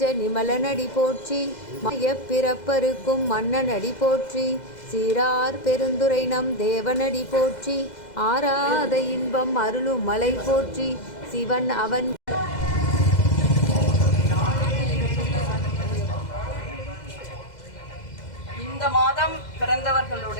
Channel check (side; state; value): right; late; 2.0 ms